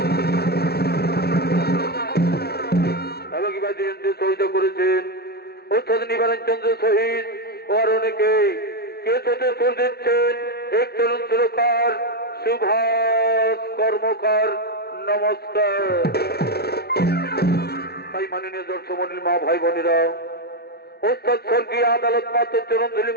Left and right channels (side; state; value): right; late; 0.46 ms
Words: এবং বাদ্যযন্ত্রে সহযোগিতা করেছেন অর্থাৎ নিবারণ চন্দ্র শহীদ ও আর অনেকে কেসতে সুর দিচ্ছেন এক তরুণ সুরকার সুভাষ কর্মকার। নমস্কার। তাই মাননীয় দর্শক মন্ডলী, মা ভাই বোনেরা, ওস্তাদ স্বর্গীয় আদালত মাত্র চরণ ধুলি